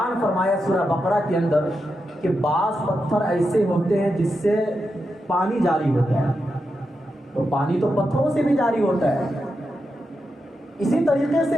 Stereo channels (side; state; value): both; normal; correlation 0.87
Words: فرمایا سورہ بقرہ کے اندر کہ بعض پتھر ایسے ہوتے ہیں جس سے پانی جاری ہوتا ہے، تو پانی تو پتھروں سے بھی جاری ہوتا ہے۔ اسی طریقے